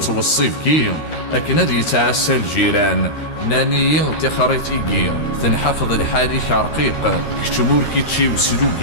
كي أكنا دي يتعسى الجيران ناني تخريتيكي تنحفظ الحالي شرقيق كتمور كيتشي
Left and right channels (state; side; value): late; right; 13 ms